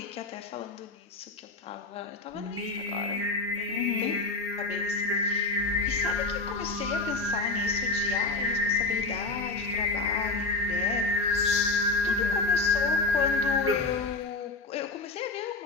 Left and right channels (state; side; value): quieter; right; 3.5 dB